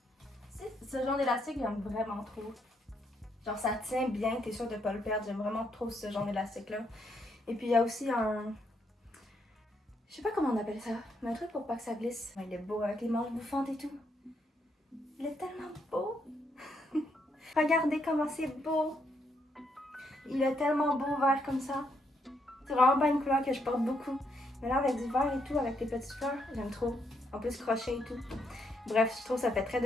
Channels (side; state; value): both; normal; correlation 0.76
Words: Ce genre d'élastique, j'aime vraiment trop. Genre ça tient bien. T'es sûr de pas le perdre. J'aime vraiment trop ce genre d'élastique-là. Et puis il y a aussi un... Je sais pas comment on appelle ça. Mais un truc pour pas que ça glisse. Il est beau avec les manches bouffantes et tout. Il est tellement beau. Regardez comment c'est beau. Il est tellement beau vert comme ça. C'est vraiment pas une couleur que je porte beaucoup. Mais là avec du vert et tout, avec les petites fleurs, j'aime trop. En plus crochet et tout. Bref, je trouve que ça fait très